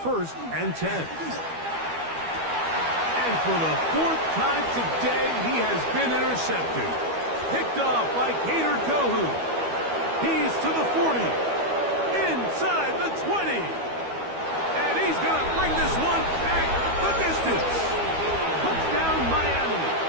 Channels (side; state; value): left; late; 12 ms